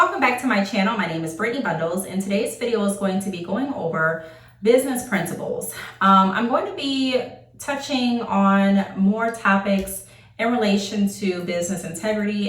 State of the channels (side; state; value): both; identical; correlation 1.00